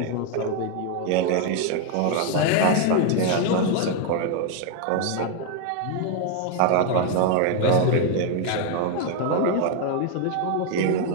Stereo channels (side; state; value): both; different; correlation 0.01